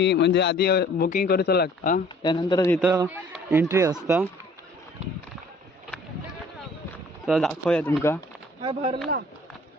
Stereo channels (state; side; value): normal; both; correlation 0.54